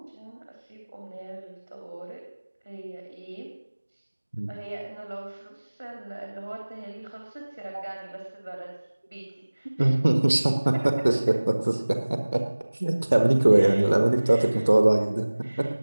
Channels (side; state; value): both; inverted; correlation -1.00